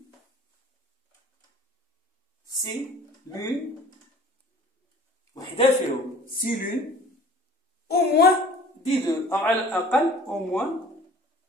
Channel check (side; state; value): both; normal; correlation 0.47